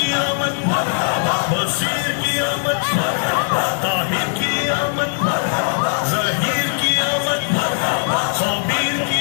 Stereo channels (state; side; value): silent; right; digital silence